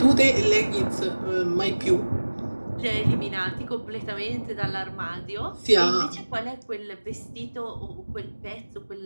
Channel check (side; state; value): both; inverted; correlation -1.00